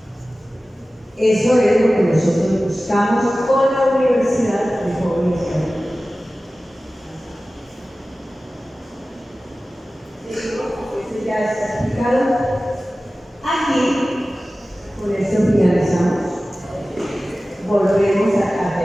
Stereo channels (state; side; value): normal; both; correlation 0.96